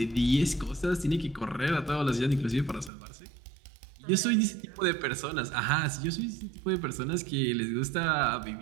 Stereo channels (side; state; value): left; drops out; at 2.9 s